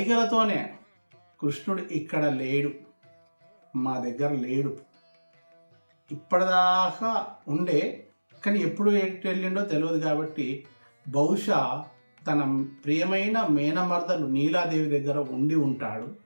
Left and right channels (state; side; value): inverted; both; correlation -1.00